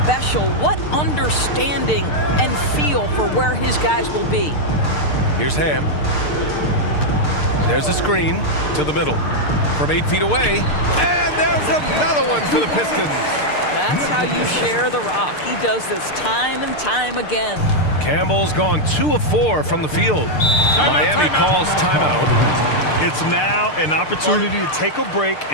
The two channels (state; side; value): late; right; 6.6 ms